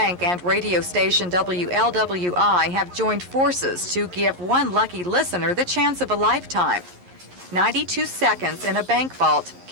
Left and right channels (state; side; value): late; left; 11 ms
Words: and radio station WLWI have joined forces to give one lucky listener the chance of a lifetime. 92 seconds in a bank vault